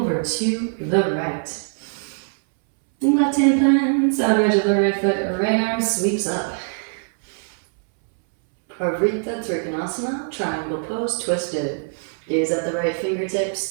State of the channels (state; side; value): silent; left; 64 dB below the other